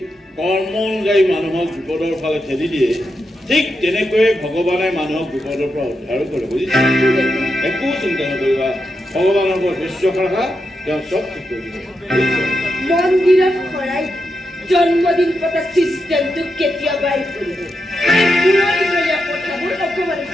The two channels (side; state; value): both; normal; correlation 0.85